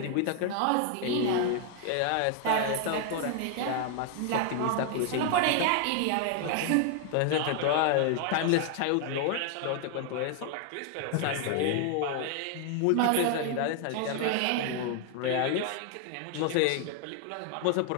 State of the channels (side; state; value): both; different; correlation 0.00